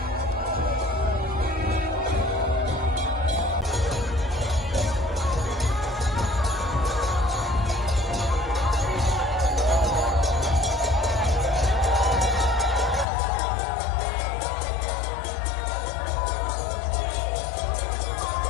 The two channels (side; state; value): right; drops out; at 13.1 s